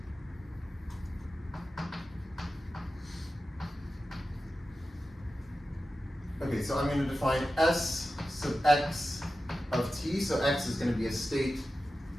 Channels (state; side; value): normal; both; correlation 0.93